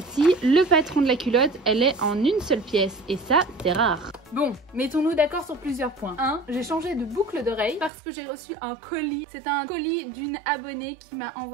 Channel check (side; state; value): left; drops out; at 7.9 s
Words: le patron de la culotte, elle est en une seule pièce et ça, c'est rare. Bon, mettons-nous d'accord sur plusieurs points. 1. J'ai changé de boucle d'oreille parce que j'ai reçu un colis. C'est un colis d'une abonnée qui m'a